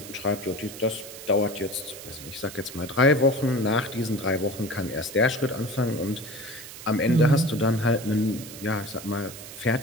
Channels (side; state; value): right; noise; hiss, 13 dB below the sound